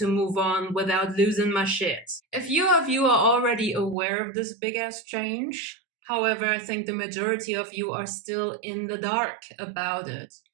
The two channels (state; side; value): drops out; left; at 4.0 s